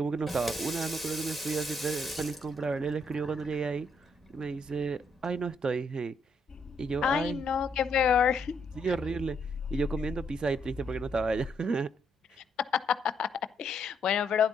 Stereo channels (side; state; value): both; normal; correlation 0.74